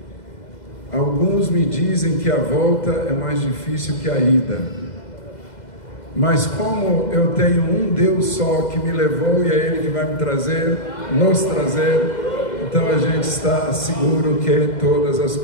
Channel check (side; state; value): right; late; 2.0 ms